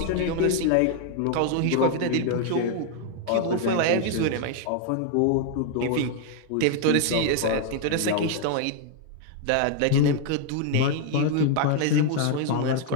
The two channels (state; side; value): different; both; correlation 0.00